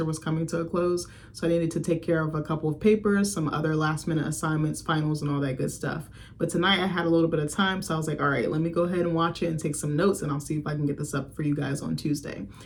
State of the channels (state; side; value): identical; both; correlation 1.00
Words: was coming to a close, so I needed to take care of a couple of papers, some other last minute assignments, finals, and all that good stuff. But tonight I had a little bit of time, so I was like, all right, let me go ahead and watch it and take some notes, and I'll see if I can get this up for you guys on Tuesday.